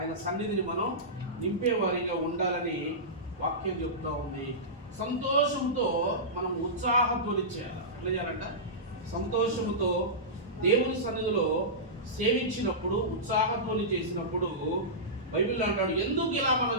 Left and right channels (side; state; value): both; normal; correlation -0.16